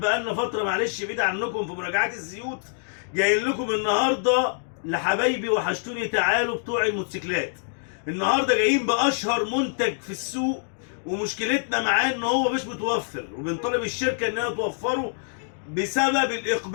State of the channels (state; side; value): silent; right; digital silence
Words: بقالنا فترة معلش بعيد عنكم في مراجعات الزيوت، جايين لكم النهاردة لحبايبي وحشتوني تعالوا بتوع الموتوسيكلات. النهاردة جايين بأشهر منتج في السوق، ومشكلتنا معاه إن هو مش متوفر، وبنطالب الشركة إنها توفره بسبب